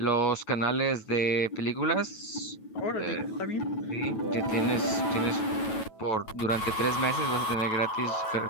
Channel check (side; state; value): right; late; 9.2 ms